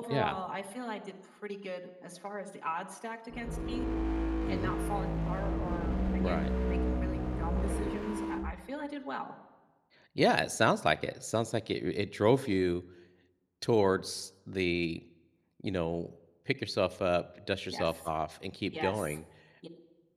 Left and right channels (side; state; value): both; identical; correlation 1.00